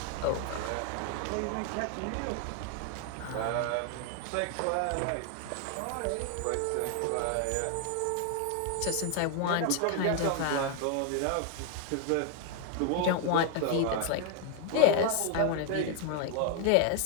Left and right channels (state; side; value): different; both; correlation 0.01